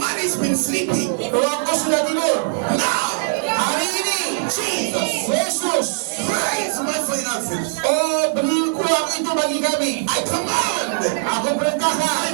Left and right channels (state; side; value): silent; left; 65 dB below the other